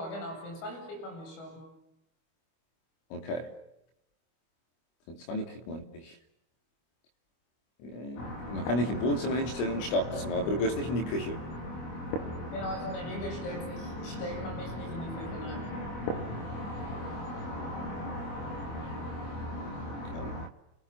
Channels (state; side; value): late; right; 25 ms